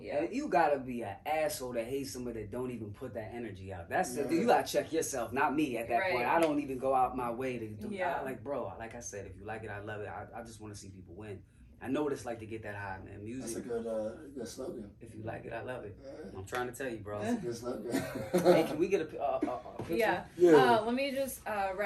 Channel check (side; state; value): both; identical; correlation 1.00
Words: Yeah, you gotta be an asshole that hates somebody that don't even put that energy out. That's you gotta check yourself, not me at that point. I don't even go out my way to do. Like, bro, like I said, if you like it, I love it. I just want to see people win. I know what it's like to get that high, man. Music. That's a good slogan. If you like it, I love it. I'm trying to tell you, bro. That's a good slogan. Hey, can we get a picture? Yeah. Let me just